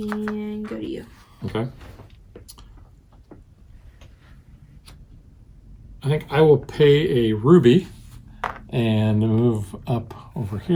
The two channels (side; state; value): both; identical; correlation 1.00